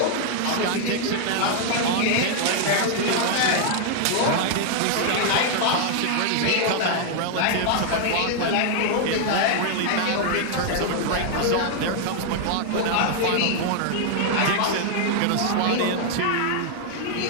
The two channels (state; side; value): different; both; correlation 0.00